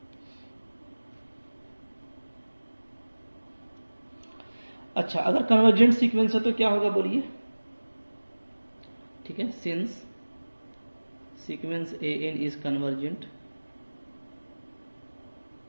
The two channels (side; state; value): both; inverted; correlation -1.00